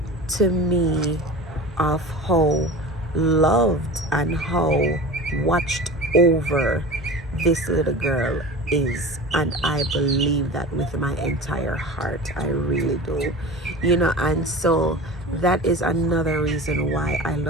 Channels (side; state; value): both; normal; correlation 0.34